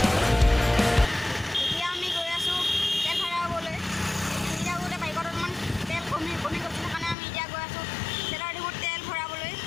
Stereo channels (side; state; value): right; drops out; at 7.2 s